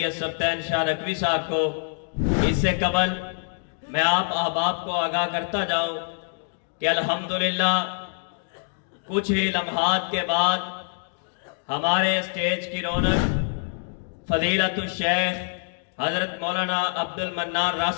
سبطین شاہ نقوی صاحب کو اس سے قبل میں آپ احباب کو آگاہ کرتا جاؤں کہ الحمدللہ کچھ ہی لمحات کے بعد ہمارے اسٹیج کی رونق فضیلت الشیخ حضرت مولانا عبد المنان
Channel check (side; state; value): right; silent; digital silence